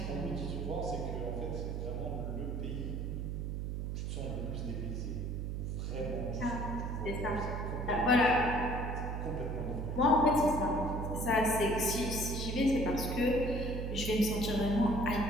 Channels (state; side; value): noise; right; hum, 3 dB below the sound